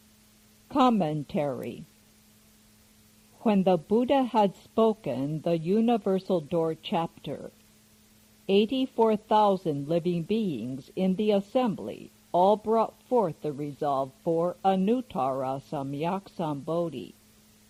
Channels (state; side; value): identical; both; correlation 1.00